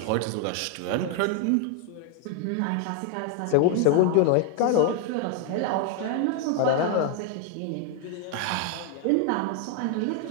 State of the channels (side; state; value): both; different; correlation 0.00